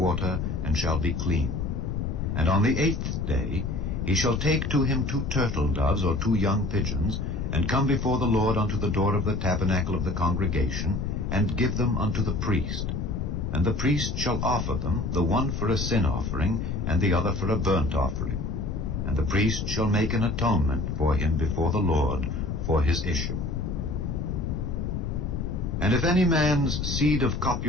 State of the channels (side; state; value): left; noise; rumble, 2 dB below the sound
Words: and shall be clean. And on the 8th day he shall take to him 2 turtle doves or 2 young pigeons, and come before the Lord unto the door of the tabernacle of the congregation, and give them unto the priest. And the priest shall offer them, the one for a sin offering, and the other for a burnt offering. And the priest shall make an atonement for him before the Lord for his issue. And if any man's seed of